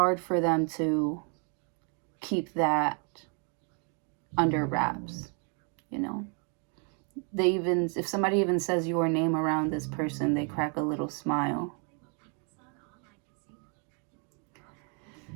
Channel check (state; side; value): quieter; left; 38.6 dB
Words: for them to keep that under wraps, They even, if somebody even says your name around this person, they crack a little smile.